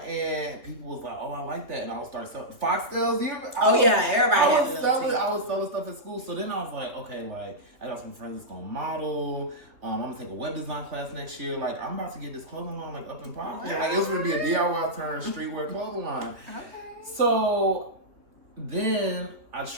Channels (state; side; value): late; left; 3.3 ms